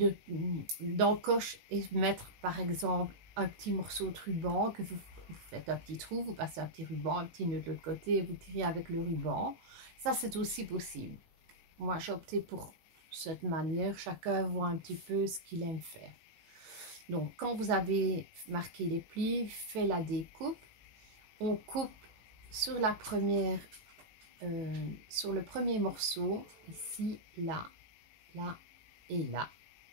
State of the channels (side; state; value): left; late; 18 ms